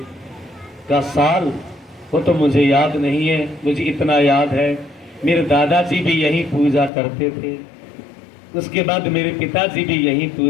का साल? वो तो मुझे याद नहीं है, मुझे इतना याद है, मेरे दादाजी भी यही पूजा करते थे, उसके बाद मेरे पिताजी भी यही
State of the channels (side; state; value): right; drops out; at 6.9 s